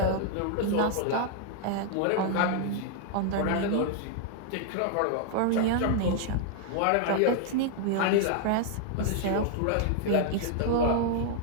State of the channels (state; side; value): different; both; correlation 0.00